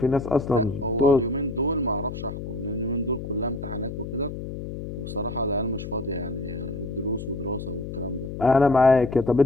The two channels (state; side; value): noise; left; hum, 8 dB below the sound